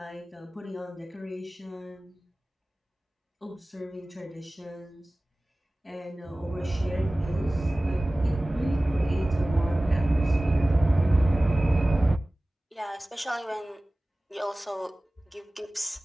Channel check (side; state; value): both; normal; correlation 0.98